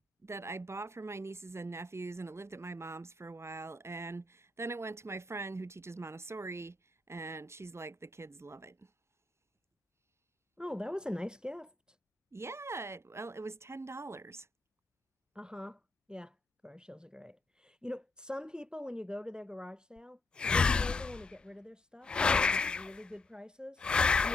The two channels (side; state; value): right; quieter; 3.0 dB